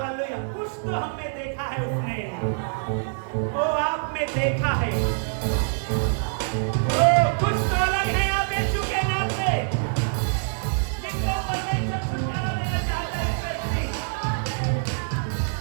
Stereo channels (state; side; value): silent; left; digital silence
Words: कुछ तो हमने देखा है उसने, वो आप में देखा है। ओ कुछ तो अलग है आप यीशु के नाम से, जिनको परमेश्वर छुटकारा देना चाहता है।